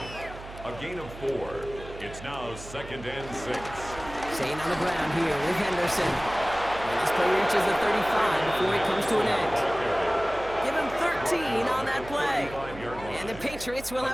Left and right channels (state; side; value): noise; right; hum, 14 dB below the sound